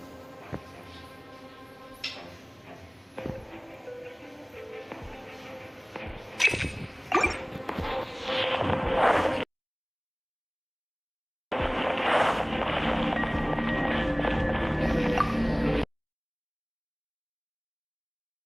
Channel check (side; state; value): both; identical; correlation 1.00